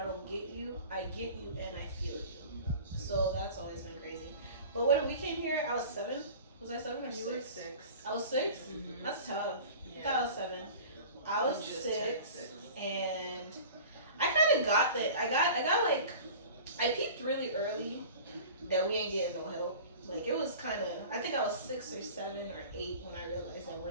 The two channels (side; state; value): both; inverted; correlation -0.40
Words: don't get you. I get you and I feel you. So that's always been crazy. But when we came here, I was 7. Was I 7 or 6? You were 6. I was 6? Mm-hmm. That's tough. Yeah. I thought I was 7. I was You just 6, turned 6. and I got like, I peeped really early that we ain't getting no help. Like it was kind of, I think I was 6 or 7 or 8 when I realized that we're